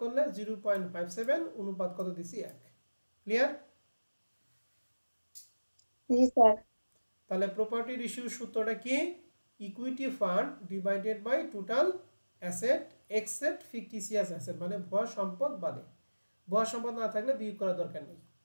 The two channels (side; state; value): both; inverted; correlation -1.00